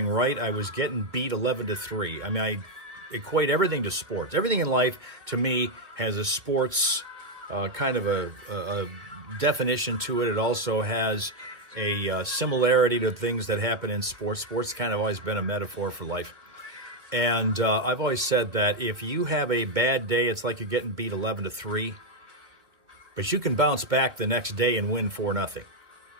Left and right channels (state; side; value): late; left; 2.3 ms